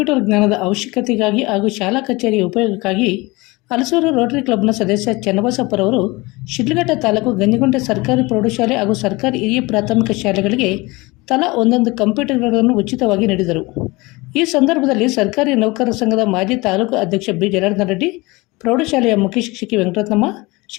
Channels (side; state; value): right; quieter; 23.4 dB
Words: ಜ್ಞಾನದ ಅವಶ್ಯಕತೆಗಾಗಿ ಹಾಗೂ ಶಾಲಾ ಕಚೇರಿಯ ಉಪಯೋಗಕ್ಕಾಗಿ ಹಲಸೂರು ರೋಟರಿ ಕ್ಲಬ್ನ ಸದಸ್ಯ ಚನ್ನಬಸಪ್ಪರವರು ಶಿಡ್ಲಘಟ್ಟ ತಾಲೂಕು ಗಂಜಿಗುಂಟೆ ಸರ್ಕಾರಿ ಪ್ರೌಢಶಾಲೆ ಹಾಗೂ ಸರ್ಕಾರಿ ಹಿರಿಯ ಪ್ರಾಥಮಿಕ ಶಾಲೆಗಳಿಗೆ ತಲಾ ಒಂದೊಂದು ಕಂಪ್ಯೂಟರ್ಗಳನ್ನು ಉಚಿತವಾಗಿ ನೀಡಿದರು. ಈ ಸಂದರ್ಭದಲ್ಲಿ ಸರ್ಕಾರಿ ನೌಕರರ ಸಂಘದ ಮಾಜಿ ತಾಲೂಕು ಅಧ್ಯಕ್ಷ ಬಿ ಜನಾರ್ದನ ರೆಡ್ಡಿ, ಪ್ರೌಢಶಾಲೆಯ ಮುಖ್ಯ ಶಿಕ್ಷಕಿ ವೆಂಕಟರತ್ನಮ್ಮ,